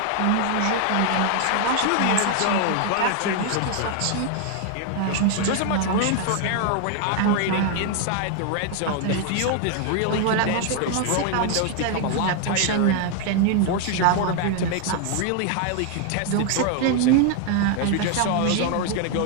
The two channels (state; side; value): different; both; correlation 0.00